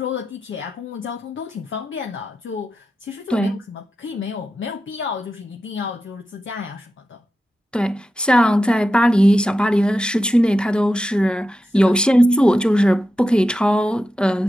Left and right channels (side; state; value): both; normal; correlation 0.90